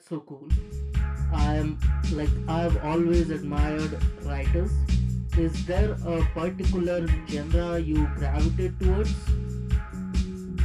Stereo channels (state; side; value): identical; both; correlation 1.00